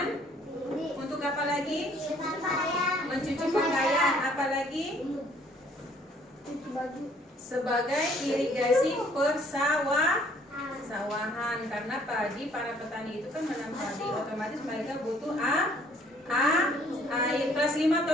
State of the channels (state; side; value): normal; both; correlation 0.61